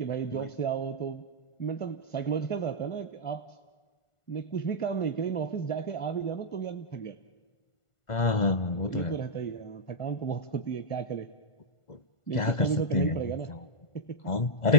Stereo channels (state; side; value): late; right; 1.5 ms